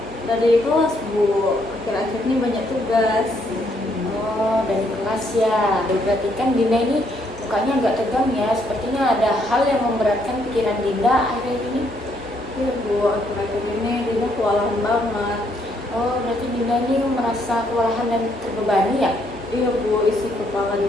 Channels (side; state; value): both; normal; correlation 0.72